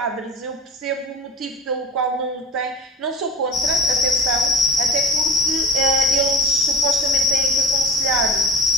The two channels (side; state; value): both; normal; correlation 0.34